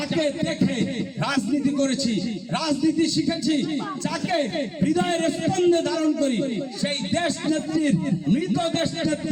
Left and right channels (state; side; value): identical; both; correlation 1.00